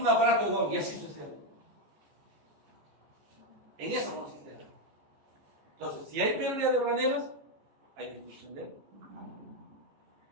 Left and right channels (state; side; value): late; left; 14 ms